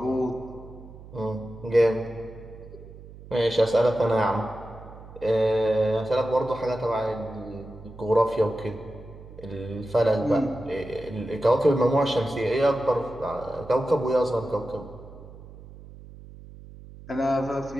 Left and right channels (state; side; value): noise; right; hum, 17 dB below the sound